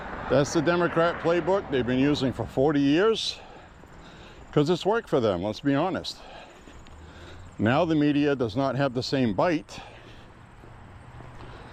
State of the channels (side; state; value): both; identical; correlation 1.00